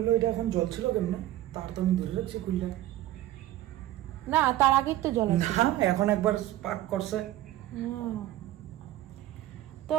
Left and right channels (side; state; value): left; quieter; 14.6 dB